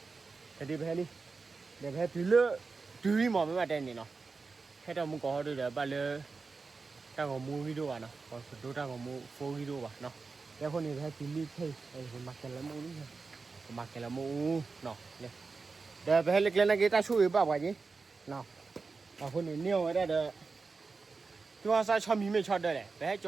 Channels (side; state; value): left; quieter; 4.4 dB